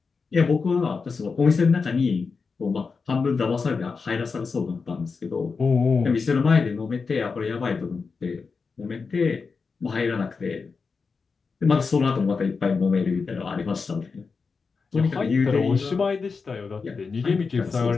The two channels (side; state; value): right; quieter; 4.9 dB